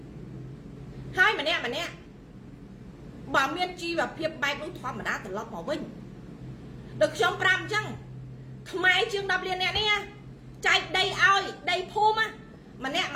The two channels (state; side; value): identical; both; correlation 1.00